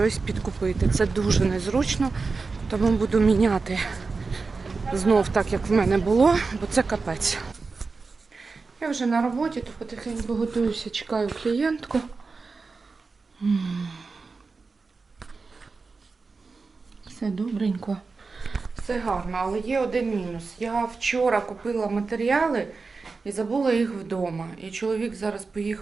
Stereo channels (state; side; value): quieter; left; 4.3 dB